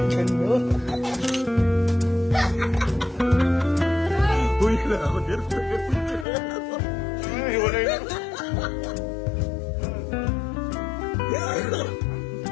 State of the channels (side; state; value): right; drops out; at 6.2 s